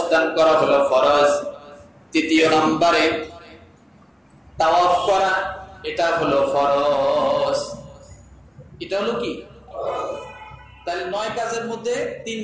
করা হলো ফরজ। তৃতীয় নম্বরে তাওয়াফ করা, এটা হলো ফরজ। এটা হলো কি? তাহলে 9 কাজের মধ্যে 3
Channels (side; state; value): both; identical; correlation 1.00